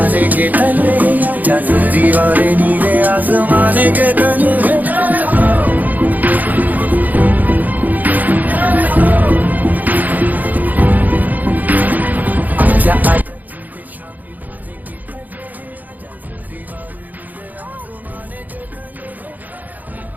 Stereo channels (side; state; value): left; late; 0.082 ms